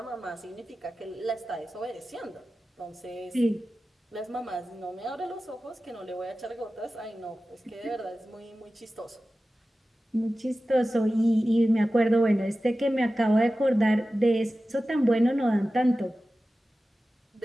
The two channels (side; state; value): both; normal; correlation 0.95